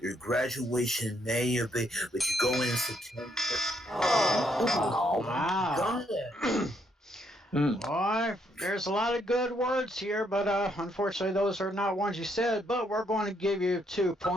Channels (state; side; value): normal; both; correlation 0.73